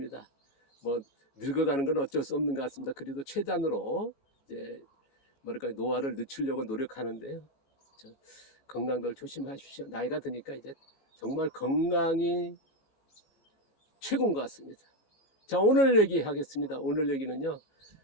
뭐 늙어가는 건 어쩔 수 없는 것 같습니다. 그래도 최단으로 이제 뭐랄까 노화를 늦추려고 노력하는데요. 건강들 조심하십시오. 나이가 드니까 이제 정말 건강이 최고인 것 같습니다. 자, 오늘 얘기하겠습니다. 오늘 얘기는요,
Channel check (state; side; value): late; right; 18 ms